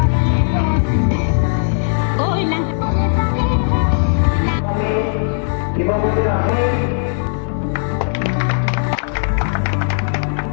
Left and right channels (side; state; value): right; silent; 65 dB below the other